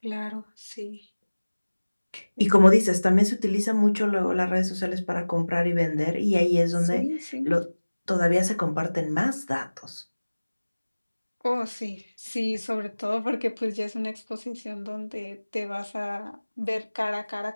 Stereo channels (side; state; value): both; inverted; correlation -1.00